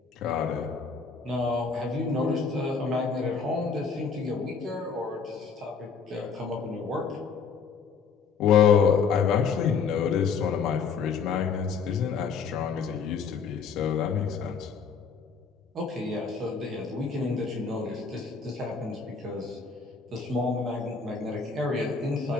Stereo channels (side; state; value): right; quieter; 5.7 dB